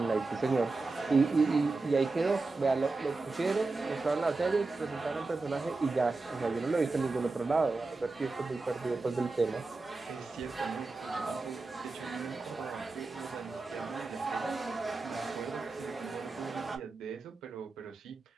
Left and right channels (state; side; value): quieter; left; 3.6 dB